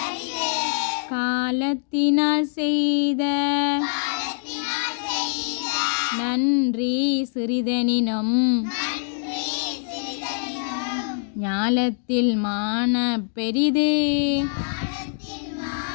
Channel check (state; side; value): silent; right; digital silence